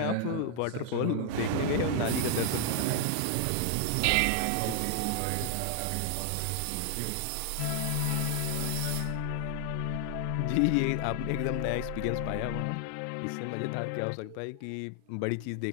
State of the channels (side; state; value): both; different; correlation 0.00